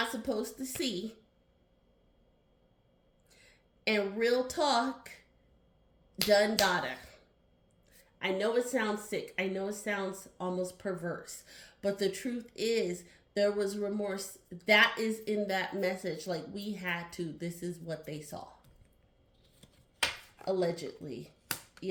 supposed to see. And real talk, done data. I know it sounds sick. I know it sounds almost perverse. But the truth is, there was remorse. That is in that message. Like, we had to. This is what they saw. Allegedly.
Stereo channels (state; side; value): identical; both; correlation 1.00